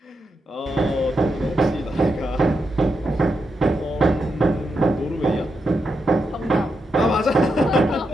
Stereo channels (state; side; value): normal; both; correlation 0.84